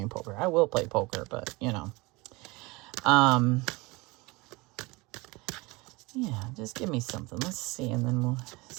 poker. I will play poker, but you know, yeah, just give me something. Let's see, and then we'll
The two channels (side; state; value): left; quieter; 24.2 dB